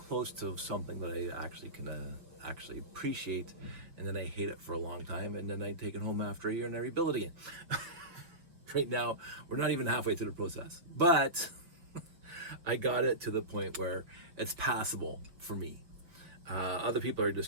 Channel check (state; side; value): late; left; 5.9 ms